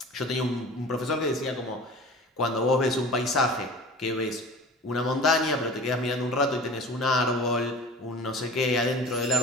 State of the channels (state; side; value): normal; both; correlation 0.39